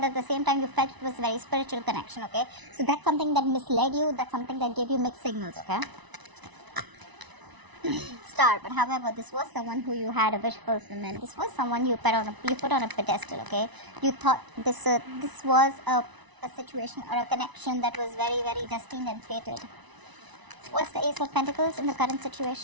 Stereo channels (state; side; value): late; left; 1.0 ms